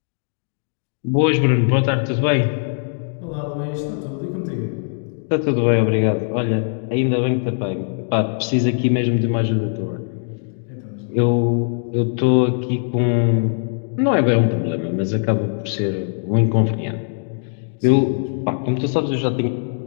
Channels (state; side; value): silent; right; digital silence